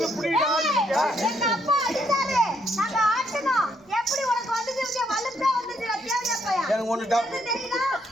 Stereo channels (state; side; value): normal; both; correlation 0.73